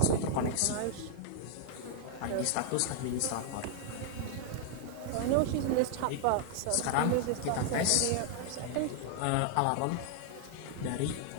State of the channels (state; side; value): different; both; correlation 0.00